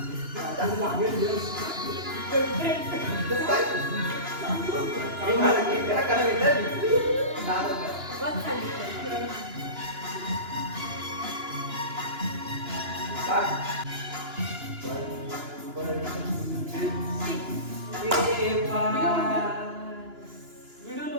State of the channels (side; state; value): left; late; 2.9 ms